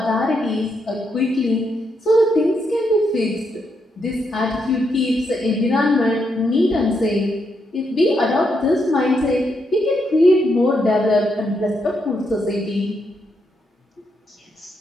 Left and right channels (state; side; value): normal; both; correlation 0.80